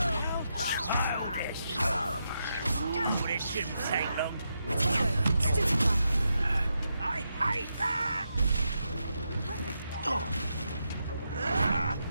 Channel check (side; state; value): both; inverted; correlation -0.84